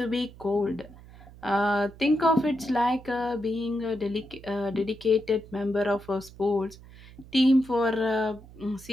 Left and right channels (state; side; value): noise; right; hum, 20 dB below the sound